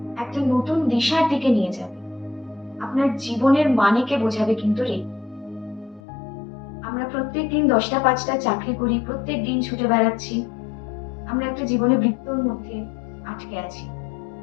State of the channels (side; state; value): right; drops out; at 6.0 s